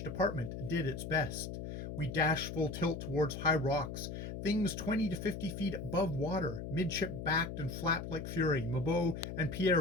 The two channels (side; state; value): left; noise; hum, 7 dB below the sound